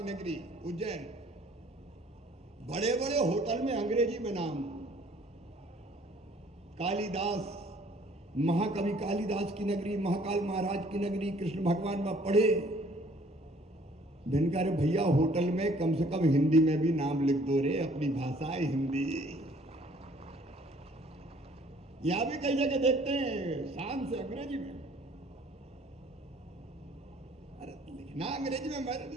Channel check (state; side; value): normal; both; correlation 0.58